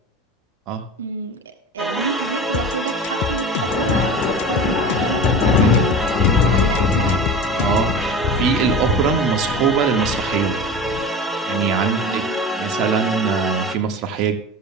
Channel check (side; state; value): both; normal; correlation 0.32